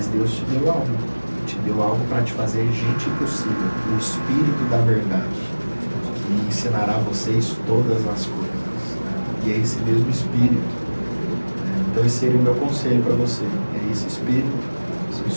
Deus te deu algo para te fazer gente impossível, o Espírito da verdade, que ensinará a vocês todas as coisas. E é esse mesmo Espírito. Então esse seria o meu conselho para você. É esse Espírito, o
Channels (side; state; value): both; inverted; correlation -1.00